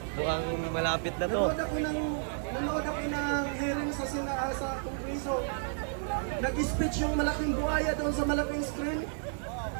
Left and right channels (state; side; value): silent; left; digital silence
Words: mukhang malapit na to. Nanood ako ng hearing sa Kongreso. Nag-speech yung malaking buhaya doon sa malaking screen.